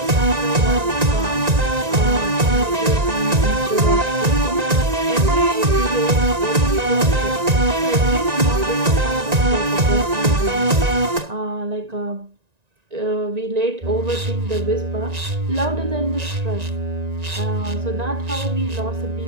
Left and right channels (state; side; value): late; left; 1.9 ms